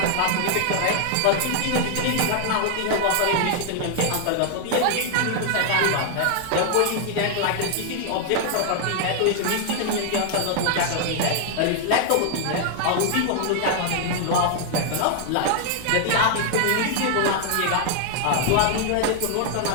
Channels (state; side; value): different; both; correlation 0.00